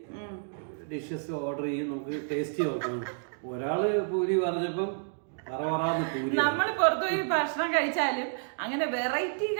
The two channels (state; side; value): silent; left; digital silence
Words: ഡിഷസ് ഓർഡർ ചെയ്യും, നമുക്ക് ടേസ്റ്റ് നോക്കണം. ഒരാള് പൂരി പറഞ്ഞപ്പം നമ്മൾ പുറത്തുപോയി ഭക്ഷണം കഴിച്ചാലും അങ്ങനെ വെറൈറ്റി